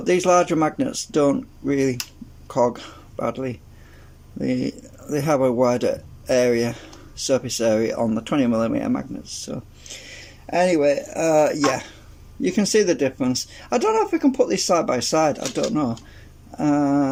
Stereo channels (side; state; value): both; identical; correlation 1.00